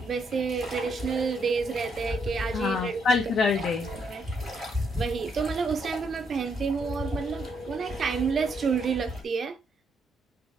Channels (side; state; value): both; normal; correlation 0.75